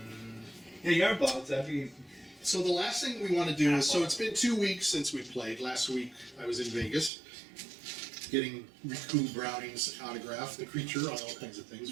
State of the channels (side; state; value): left; drops out; at 7.1 s